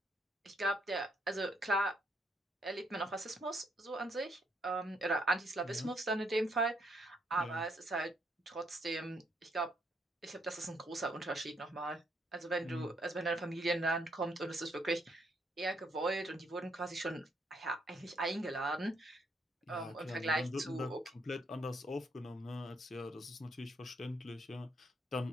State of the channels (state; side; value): normal; both; correlation 0.73